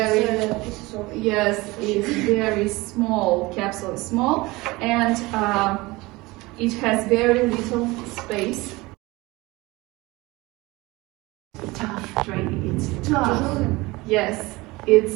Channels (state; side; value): quieter; left; 21.9 dB